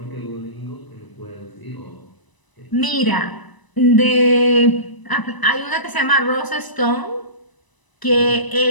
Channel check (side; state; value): right; late; 1.0 ms